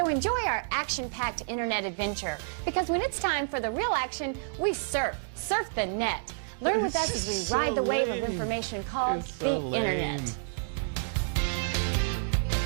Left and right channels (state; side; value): silent; left; digital silence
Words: enjoy our action-packed internet adventure, because when it's time for the real action, we surf the net. Learn with us as we So ride the wave of lame. information called It's the so lame. internet.